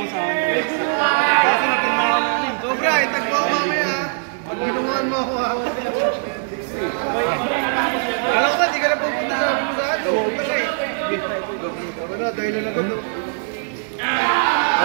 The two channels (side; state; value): left; silent; 65 dB below the other